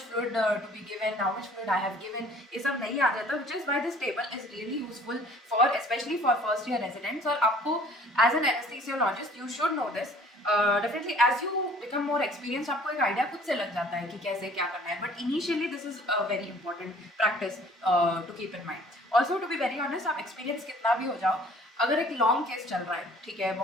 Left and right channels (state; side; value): normal; both; correlation 0.53